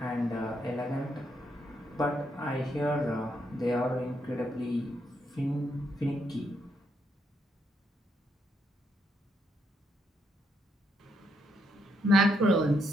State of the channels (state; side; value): normal; both; correlation 0.77